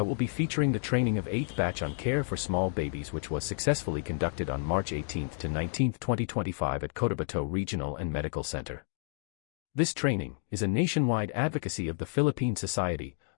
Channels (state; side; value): silent; right; digital silence